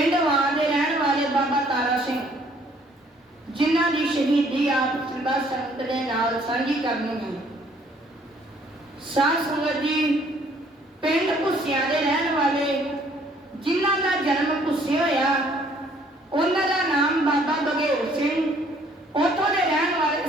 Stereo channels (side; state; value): both; normal; correlation 0.61